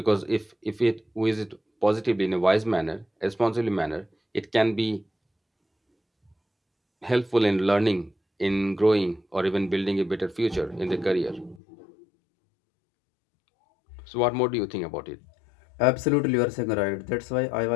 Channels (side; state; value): right; drops out; at 11.6 s